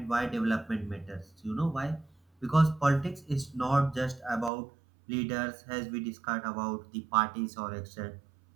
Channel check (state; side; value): drops out; left; at 4.5 s